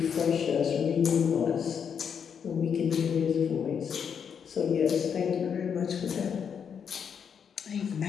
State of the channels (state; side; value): quieter; right; 7.3 dB